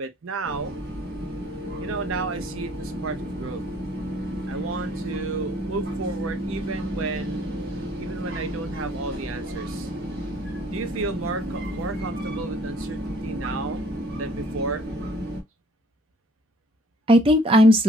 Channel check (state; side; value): normal; both; correlation 0.58